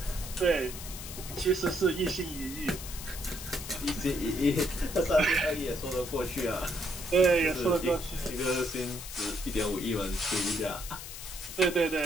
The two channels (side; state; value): left; noise; hiss, 10 dB below the sound